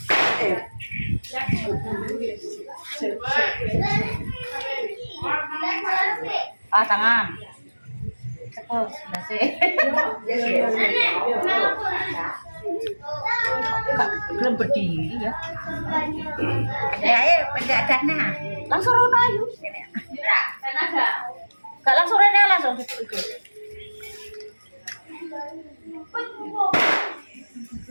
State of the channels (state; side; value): inverted; both; correlation -1.00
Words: Tangan. Terus, belum berdiri ya. Ya, penjagana. Langsung rono ayo. Gak langsung rene langsung ikut.